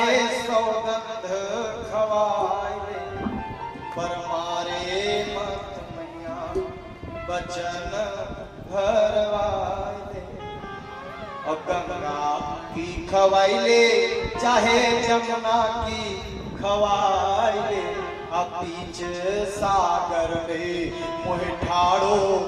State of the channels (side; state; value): both; identical; correlation 1.00